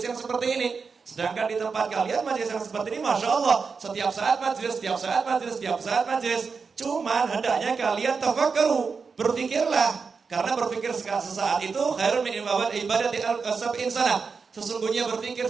yang seperti ini. Sedangkan di tempat kalian majelis yang seperti ini, Masya Allah, setiap saat majelis, setiap saat majelis, setiap saat majelis. Cuman hendaknya kalian tafakkaru, berpikirlah. Karena berpikir sesaat itu khairun min ibadati al-sab'in sanah. Sesungguhnya berpikir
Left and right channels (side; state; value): left; quieter; 5.2 dB